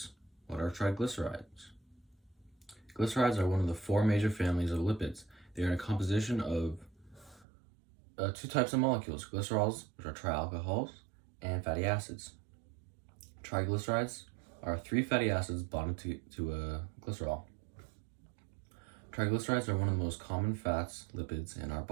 What are triglycerides? Glycerides are one of the four major families of lipids. They are in a composition of two types of molecules, glycerols, which are trialcohols, and fatty acids. Triglycerides are three fatty acids bonded to a glycerol. Triglycerides are one of the most common fats, lipids in our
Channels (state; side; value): drops out; left; at 7.5 s